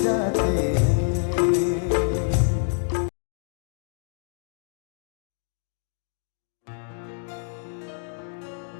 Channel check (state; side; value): silent; right; digital silence